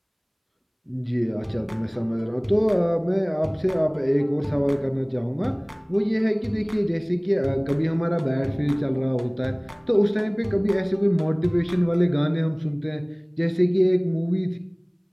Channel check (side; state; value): both; identical; correlation 1.00